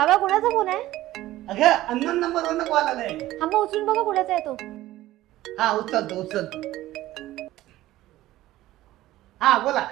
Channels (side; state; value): left; quieter; 15.7 dB